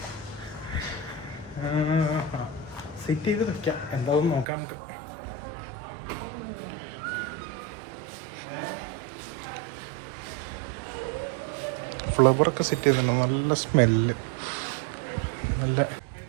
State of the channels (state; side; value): drops out; left; at 4.5 s